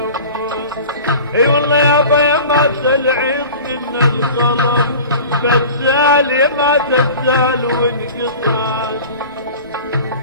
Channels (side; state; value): both; inverted; correlation -0.39